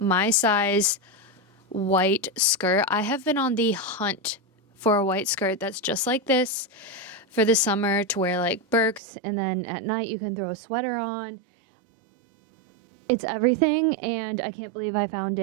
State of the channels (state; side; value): drops out; left; at 9.0 s